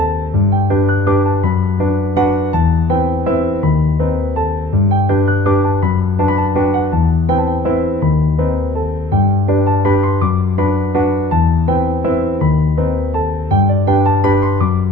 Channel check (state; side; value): normal; both; correlation 0.53